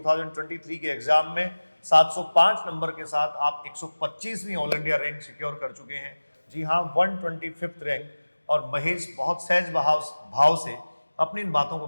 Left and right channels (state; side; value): inverted; both; correlation -1.00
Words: के एग्जाम में। 705 नंबर के साथ आप 125वीं ऑल इंडिया रैंक सिक्योर कर चुके हैं। जी हाँ, 125th रैंक। और महेश बहुत सहज भाव से अपनी इन बातों को